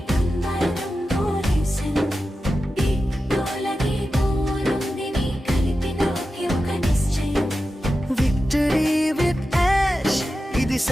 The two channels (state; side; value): normal; both; correlation 0.92